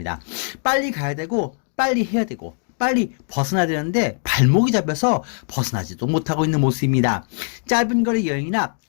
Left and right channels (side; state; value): right; silent; 57 dB below the other